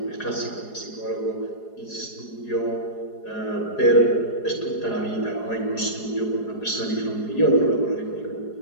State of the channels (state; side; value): late; right; 4.8 ms